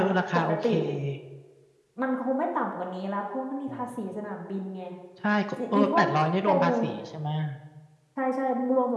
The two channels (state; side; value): identical; both; correlation 1.00